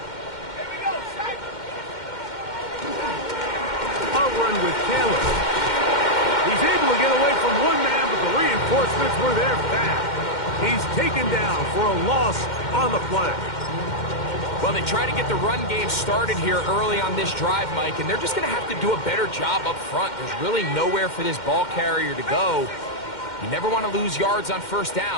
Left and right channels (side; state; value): right; late; 2.1 ms